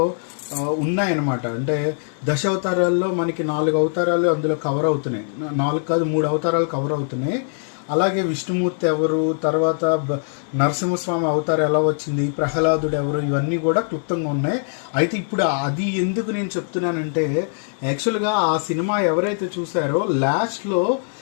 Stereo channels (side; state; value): right; silent; 64 dB below the other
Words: ఉన్నాయన్నమాట. అంటే దశావతారాల్లో మనకి 4 అవతారాలు అందులో కవర్ అవుతున్నాయి. 4 కాదు 3 అవతారాలు కవర్ అవుతున్నాయి. అలాగే విష్ణుమూర్తి ఎవరు, తర్వాత నరసింహస్వామి అవతారం ఎలా వచ్చింది, ప్రహ్లాదుడు ఎవరు, ఇవన్నీ కూడా క్లుప్తంగా ఉన్నాయి. అయితే ఇప్పుడు అది ఎందుకు నేను చెప్తున్నానంటే, యాక్చువల్గా ఆ సినిమా ఎవరైతే చూసారో లాస్ట్లో